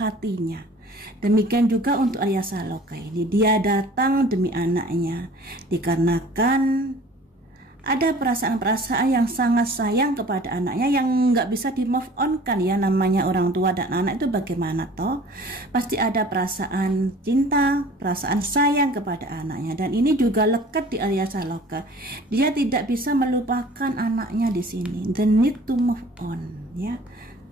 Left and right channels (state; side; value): normal; both; correlation 0.47